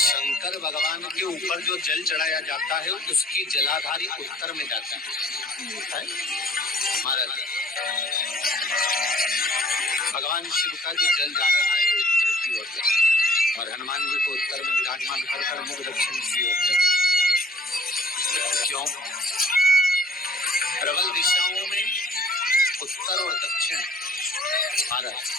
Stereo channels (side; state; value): both; normal; correlation 0.52